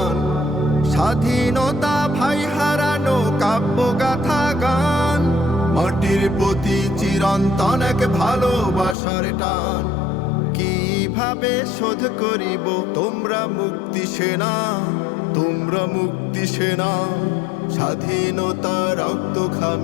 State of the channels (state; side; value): drops out; right; at 9.0 s